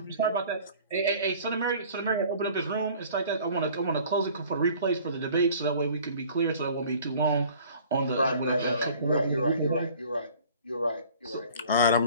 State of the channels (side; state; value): both; inverted; correlation -0.49